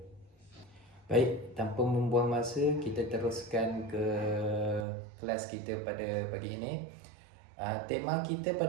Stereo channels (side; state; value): left; drops out; at 4.9 s